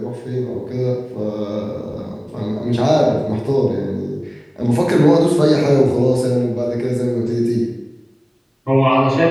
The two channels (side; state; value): both; identical; correlation 1.00